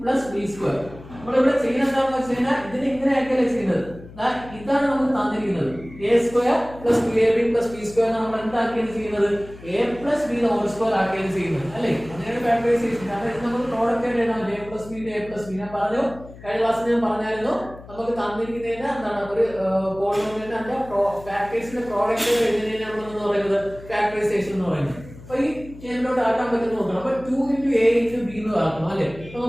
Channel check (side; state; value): left; noise; hum, 18 dB below the sound